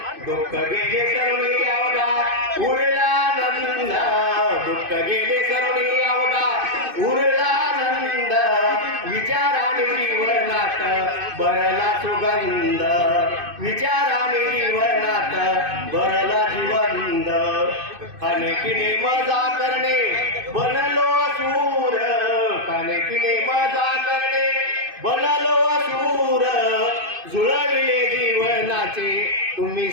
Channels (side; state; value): left; late; 2.5 ms